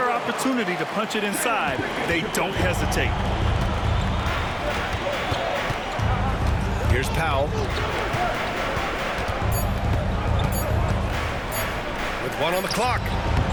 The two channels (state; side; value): identical; both; correlation 1.00